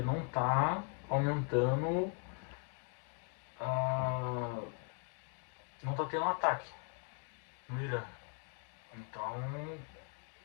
está aumentando, não está tendo um ataque no Irã. Então,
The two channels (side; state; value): right; quieter; 39.3 dB